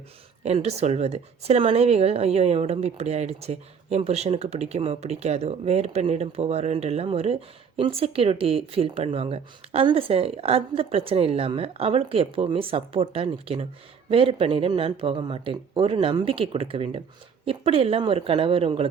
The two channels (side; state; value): left; quieter; 6.5 dB